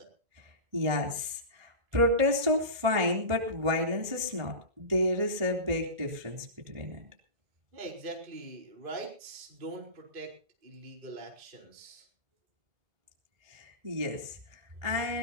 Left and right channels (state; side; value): late; left; 1.5 ms